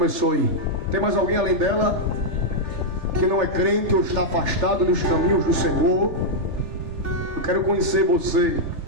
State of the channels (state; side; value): late; left; 3.3 ms